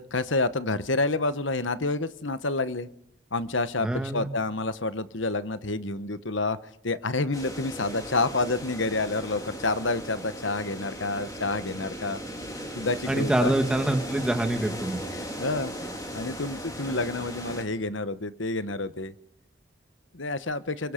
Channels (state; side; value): normal; both; correlation 0.06